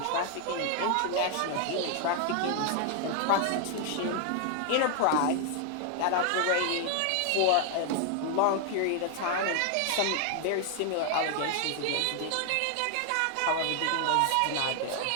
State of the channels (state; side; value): different; both; correlation 0.00